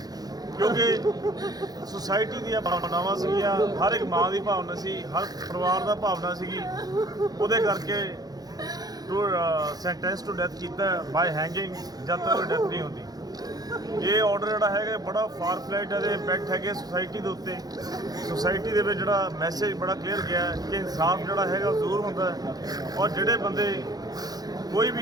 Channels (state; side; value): late; left; 0.19 ms